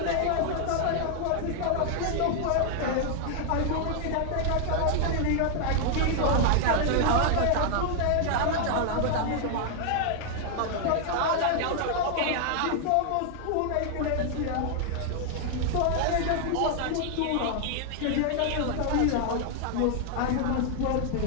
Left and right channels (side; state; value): both; different; correlation 0.00